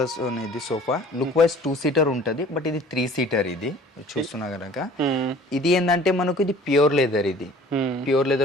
ఇది సోఫా. లుక్ వైజ్ 2 seater ఉంటుంది. బట్ ఇది 3 seater. ఇది చూస్తున్నా కనుక ఇది ఏంటంటే మనకు ఇది ప్యూర్ లెదర్. ఇది ప్యూర్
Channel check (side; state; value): both; normal; correlation 0.49